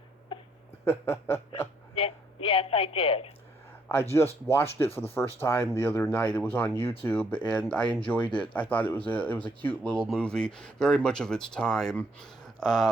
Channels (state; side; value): normal; both; correlation 0.70